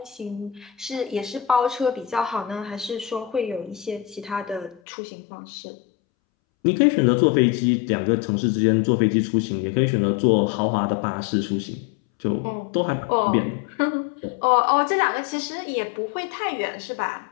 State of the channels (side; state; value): right; drops out; at 4.8 s